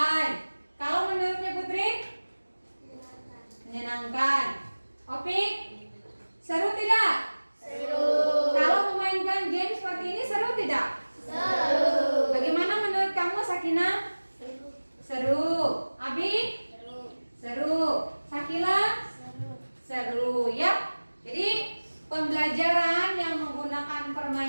Kalau menurutnya Putri? Menyenangkan. Opik? Seru tidak? Seru. Kalau memainkan game seperti ini seru tidak? Seru. Bagaimana menurut kamu Sakinah? Seru. Abi? Seru. Sakila? Seru ya. Jadi pembelajaran yang menggunakan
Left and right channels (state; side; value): inverted; both; correlation -1.00